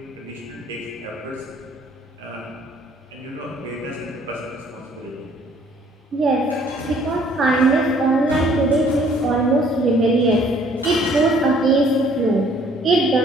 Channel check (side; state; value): both; normal; correlation 0.59